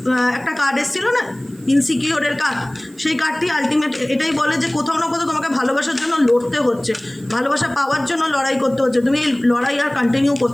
একটা কার্ড এসেছিল না, ইনসিকিওরের কার্ড, সেই কার্ডটি আলটিমেট এটাই বলে যে কোথাও না কোথাও তোমাকে ভালোবাসার জন্য লড়তে হচ্ছে, ভালোবাসা পাওয়ার জন্য লড়াই করতে হচ্ছে। তুমি এই লড়াই আর কন্টিনিউ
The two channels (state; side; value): noise; right; hiss, 27 dB below the sound